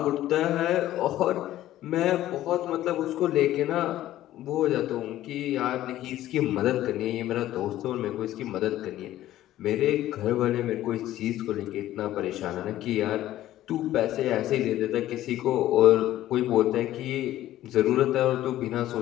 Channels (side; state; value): right; quieter; 13.9 dB